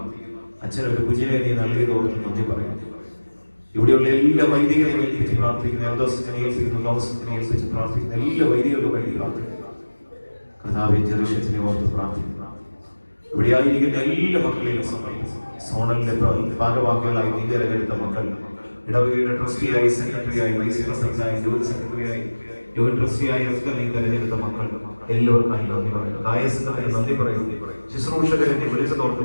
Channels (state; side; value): inverted; both; correlation -1.00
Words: അച്ഛനൊരു കുഞ്ഞിനെ നീ നൽകിയത് ഓർത്ത് നന്ദി പറയുന്നു. ഇവിടെയുള്ള എല്ലാ വൈദികരെയും ഏൽപ്പിച്ച് പ്രാർത്ഥിക്കുന്നു. എൽദോസിനെ ഏൽപ്പിക്കുന്നു, ലോകസിനെ ഏൽപ്പിച്ച് പ്രാർത്ഥിക്കുന്നു. എല്ലാ വൈദികരുടെ വഴി പ്രാർത്ഥിക്കുന്നു. കർത്താവേ, ജെറുസലേമിനെ ഓർത്ത് പ്രാർത്ഥിക്കുന്നു. ഇവിടെ ആയിരിക്കുന്ന എല്ലാ മക്കളെയും സോണലിന്റെ ഭാഗവാക്കുകളായി നീ തിരഞ്ഞെടുത്ത മക്കൾ, ഇടവകയുടെ ട്രസ്റ്റിയായി, സെക്രട്ടറിയായി, വൈസ് പ്രസിഡന്റായി, ജോയിന്റ് സെക്രട്ടറിയായി, ജോയിന്റ് ട്രസ്റ്റിയായി ഒക്കെ നീ തിരഞ്ഞെടുത്ത മക്കൾ എല്ലാവർക്കായി നന്ദി പറയുന്നു. ദായസത്തിന് നന്ദി പറയുന്നു. ശുശ്രൂഷകരെ നീ വിളിച്ചതോർത്ത്